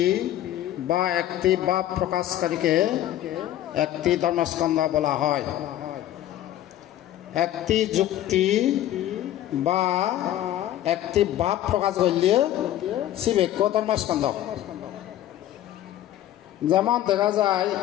বা একটি ভাব প্রকাশকারীকে একটি ধর্মস্কন্ধ বলা হয় একটি যুক্তি বা একটি ভাব প্রকাশ করলে শিবেক্য ধর্মস্কন্ধ যেমন দেখা যায়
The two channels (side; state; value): right; quieter; 12.8 dB